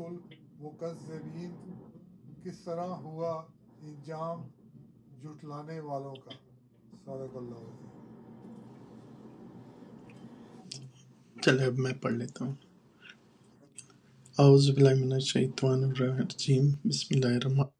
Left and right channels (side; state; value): both; identical; correlation 1.00